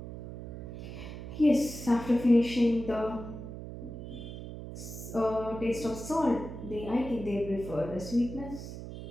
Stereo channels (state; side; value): noise; right; hum, 10 dB below the sound